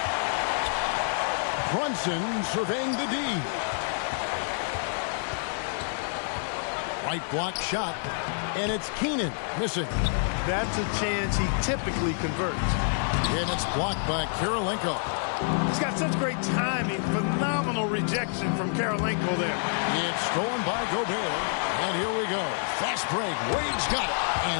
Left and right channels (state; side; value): silent; right; digital silence